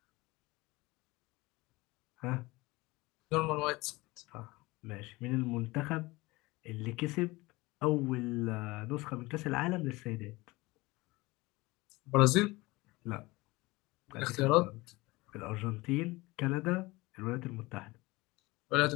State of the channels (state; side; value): quieter; right; 21.8 dB